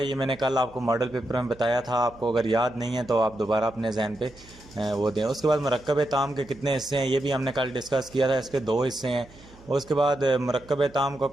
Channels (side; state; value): right; noise; hum, 23 dB below the sound